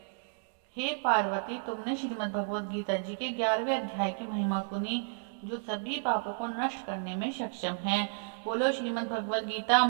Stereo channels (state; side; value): silent; left; digital silence